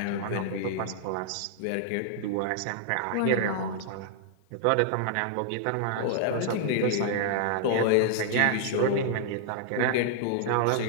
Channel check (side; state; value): both; different; correlation -0.01